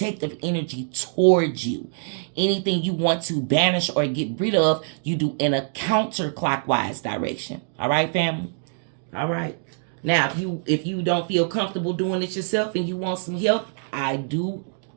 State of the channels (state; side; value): silent; left; digital silence